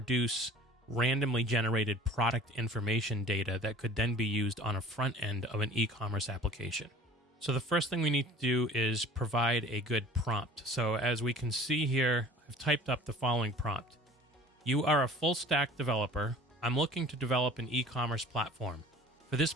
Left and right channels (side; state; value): both; normal; correlation 0.46